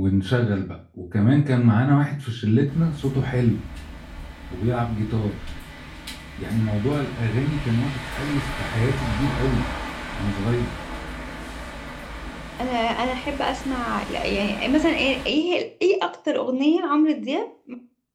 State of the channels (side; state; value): both; identical; correlation 1.00